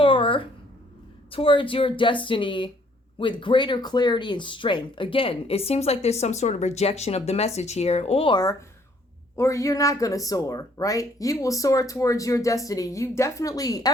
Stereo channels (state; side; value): normal; both; correlation 0.64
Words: towards your destiny with greater clarity and strength. Again, it seems like there's some sort of rejection of the message here, or you're not going to soar, right? You will soar towards your destiny.